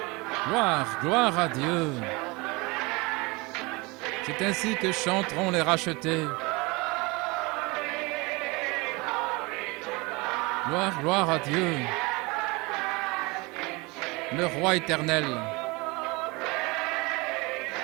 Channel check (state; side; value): quieter; left; 25.6 dB